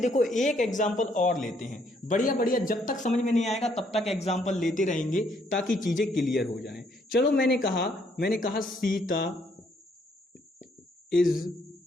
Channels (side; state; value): both; normal; correlation 0.69